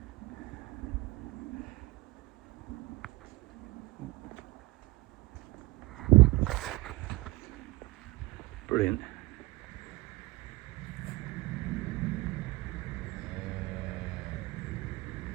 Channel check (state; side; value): quieter; left; 21.0 dB